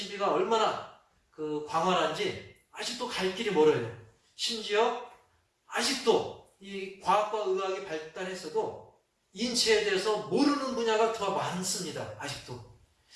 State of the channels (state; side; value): identical; both; correlation 1.00